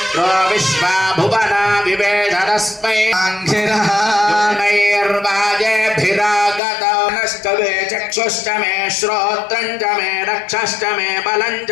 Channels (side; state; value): right; drops out; at 6.6 s